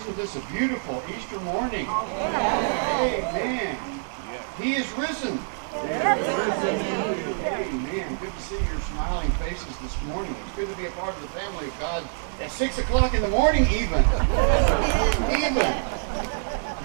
this a beautiful Easter morning. Amen. He is risen. Amen. Good to see your smiling faces this morning. It's good to be a part of the family of God at 6 o'clock in the morning even. Amen.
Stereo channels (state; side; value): silent; left; digital silence